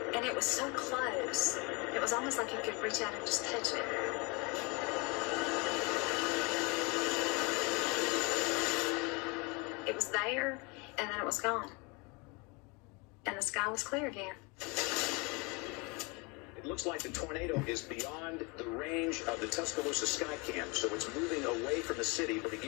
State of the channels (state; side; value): quieter; right; 29.0 dB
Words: and it was so close. It was almost like you could reach out and just touch it. It was there, and then it was gone. And the sky was clear again. It looks like the tornado is beyond the range of the Tuscaloosa sky cam, so it's moving away from the city. But